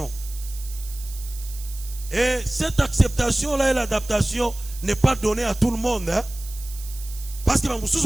Et cette acceptation-là et l'adaptation n'est pas donnée à tout le monde. Hein? Parce que les gens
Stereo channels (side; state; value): right; noise; hiss, 15 dB below the sound